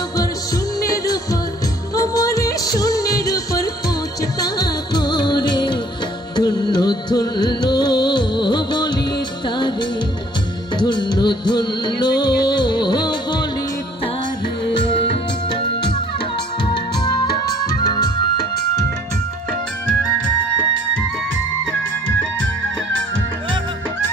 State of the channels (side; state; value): both; normal; correlation 0.56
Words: ঘর শূন্যের উপর, মনে শূন্যের উপর পৌঁছতা করে। ধন্য ধন্য বলি তারে, ধন্য ধন্য বলি তারে।